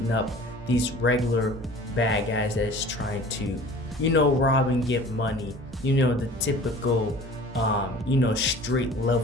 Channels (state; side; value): normal; both; correlation 0.45